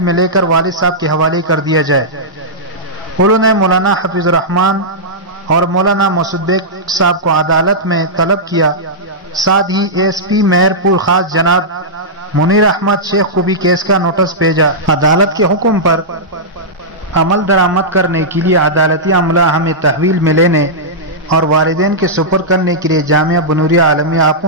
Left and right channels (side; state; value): both; normal; correlation -0.12